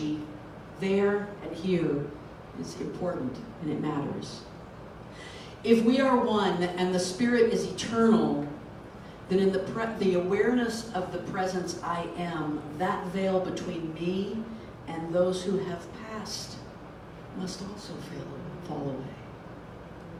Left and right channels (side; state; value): both; identical; correlation 1.00